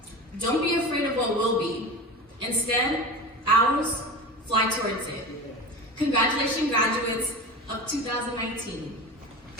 Don't be afraid of what will be. Instead, ours, fly towards it. Congratulations, graduates of 2019.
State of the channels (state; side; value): normal; both; correlation 0.29